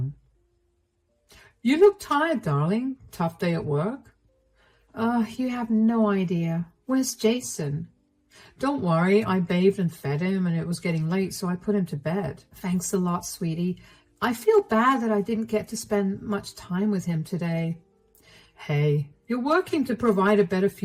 "You look tired, darling. Tough day at work?" You have no idea. Where's Jason?" "Don't worry, I bathed and fed him, and it was getting late, so I put him to bed." "Thanks a lot, sweetie. I feel bad that I didn't get to spend much time with him today." "Hey, you're working to provide a better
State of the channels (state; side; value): identical; both; correlation 1.00